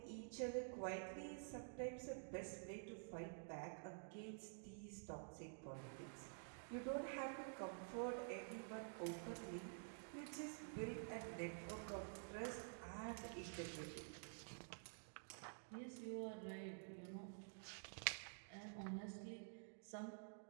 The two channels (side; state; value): left; silent; digital silence